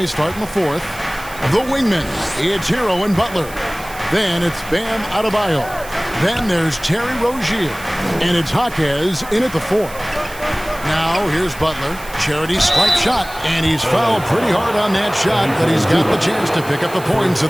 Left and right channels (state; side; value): noise; right; hiss, 17 dB below the sound